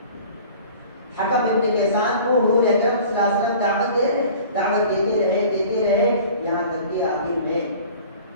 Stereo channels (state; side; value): inverted; both; correlation -0.45